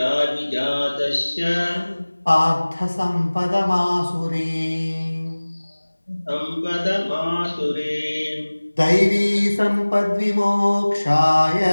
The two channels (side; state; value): both; inverted; correlation -1.00